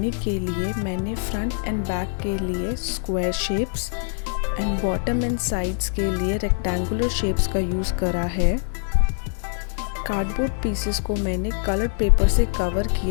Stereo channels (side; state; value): right; silent; digital silence